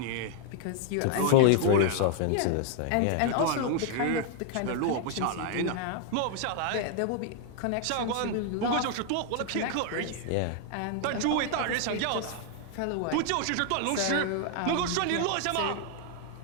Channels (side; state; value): both; different; correlation 0.00